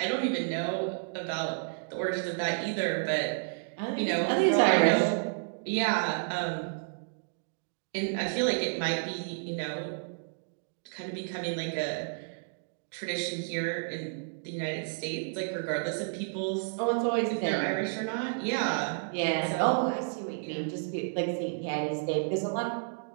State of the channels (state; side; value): silent; left; digital silence